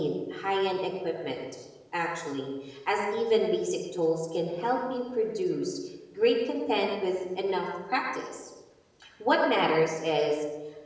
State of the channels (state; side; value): identical; both; correlation 1.00